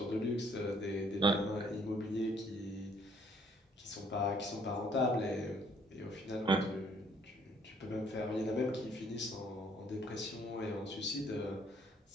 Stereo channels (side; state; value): both; normal; correlation 0.63